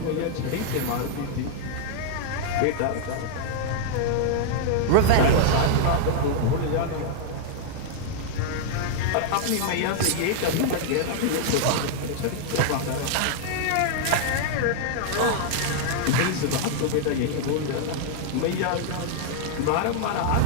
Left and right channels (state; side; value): different; both; correlation -0.01